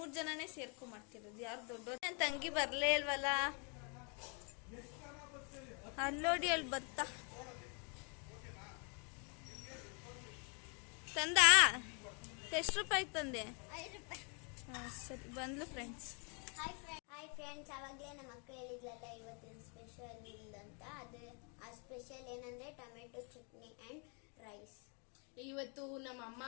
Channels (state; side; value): quieter; right; 36.7 dB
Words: ಜನನೇ ಸೇರ್ಕೊಂಡ್ ಮಾಡ್ತಿರೋದು. ಯಾರು ದೊಡ್ಡ ನನ್ ತಂಗಿ ಬರ್ಲೇ ಇಲ್ವಲ್ಲ. ಅಲ್ಲೋಡಿ, ಅಲ್ಲಿ ಬತ್ತ ತಂದ. ಎಷ್ಟು ರೂಪಾಯಿ ತಂದೆ? 5 ರೂಪಾಯಿ. ಸರಿ, ಬಂದ್ಲು ಫ್ರೆಂಡ್ಸ್. ಹಾಯ್ ಫ್ರೆಂಡ್ಸ್, ಅವಾಗಲೇ ನಮ್ಮ ಅಕ್ಕ ಹೇಳಿದ್ಲಲ್ಲ ಇವತ್ತಿನ ಸ್ಪೆಷಲ್ ಅಂತ. ಅದು ಆ ಸ್ಪೆಷಲ್ ಏನಂದ್ರೆ ಟೊಮೆಟೊ ಚಟ್ನಿ ಅಂಡ್ ರೈಸ್. ಇವತ್ತು ನಮ್ಮ ಅಮ್ಮ